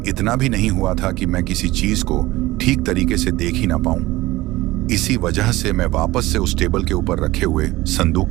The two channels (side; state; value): left; quieter; 18.5 dB